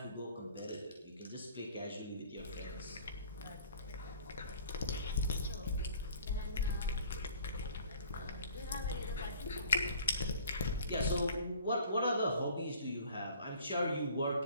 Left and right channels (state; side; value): inverted; both; correlation -0.50